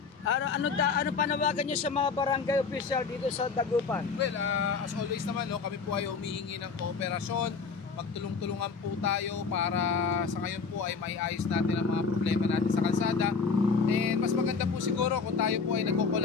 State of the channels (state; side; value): quieter; right; 5.2 dB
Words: ano panawagan niyo sa mga barangay official dito sa Dagupan? Well, as always naman, no, kami po ay humihingi ng kooperasyon. Magtulong-tulungan po tayo para sa ngayon po ay maiayos natin ang mga problema natin sa kalsada. And mas maganda po siguro kung tayo po ay